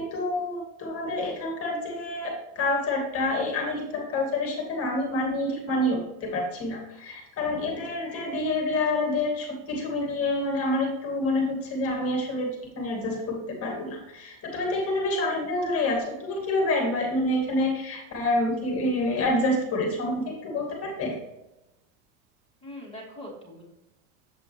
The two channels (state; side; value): normal; both; correlation 0.22